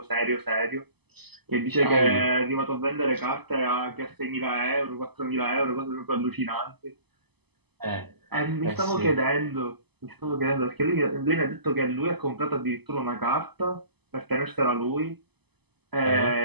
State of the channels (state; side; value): late; left; 0.98 ms